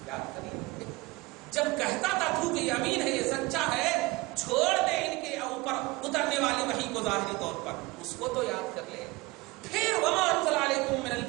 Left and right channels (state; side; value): quieter; left; 22.6 dB